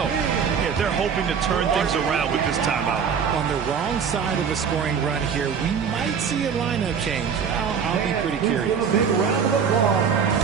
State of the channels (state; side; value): quieter; left; 6.8 dB